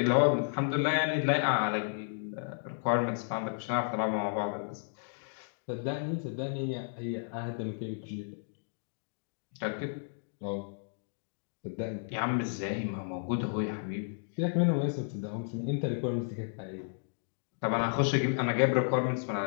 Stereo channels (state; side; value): silent; right; digital silence